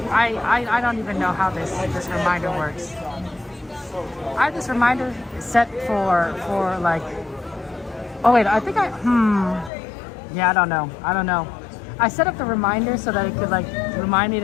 I don't even know how this reminder works. I have this reminder set for like. Oh wait, I think yeah, I don't know. I set up the reminder so that it could like remind me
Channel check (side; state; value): right; drops out; at 9.7 s